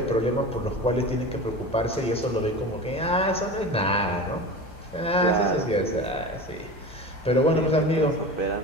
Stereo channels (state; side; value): normal; both; correlation 0.31